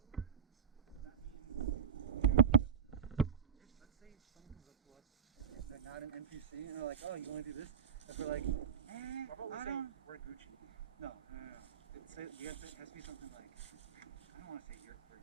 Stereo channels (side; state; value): left; quieter; 6.9 dB